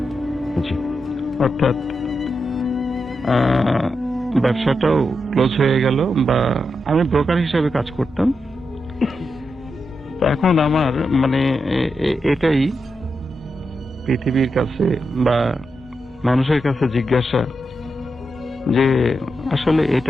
অর্থাৎ ব্যবসাটাও ক্লোজ হয়ে গেল, বা আমি ব্রোকার হিসেবে কাজ করতাম। তো এখন আমার মানে এটাই পৃথিবীর কাছে বা মানুষের কাছে জিজ্ঞাসা যে আসলে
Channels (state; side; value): normal; both; correlation 0.86